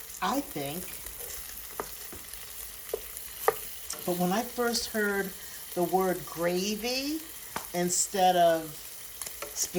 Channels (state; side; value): identical; both; correlation 1.00